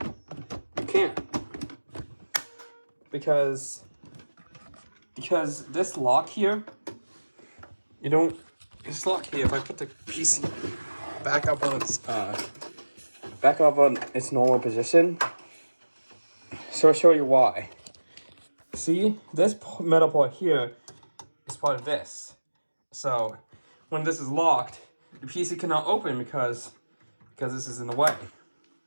can't. Because this lock here, this lock here, if I put the PC back up on its normal position, so I'll show you why. See, this metal part here is part of this. So when this is locked, the PC cannot open because this is in the way.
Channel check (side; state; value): both; inverted; correlation -1.00